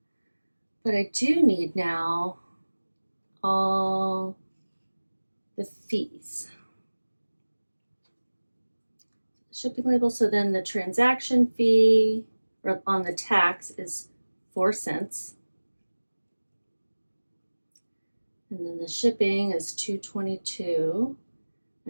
But I do need now all the fees. Shipping label, so then the transaction fee on the tax is 4 cents. And then the shipping is $2.22.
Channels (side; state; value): both; inverted; correlation -1.00